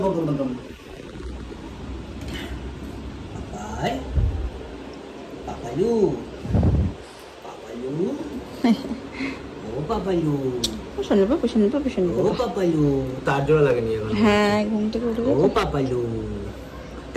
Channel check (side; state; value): both; identical; correlation 1.00